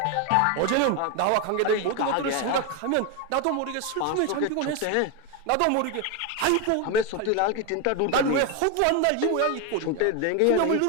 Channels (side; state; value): both; different; correlation 0.02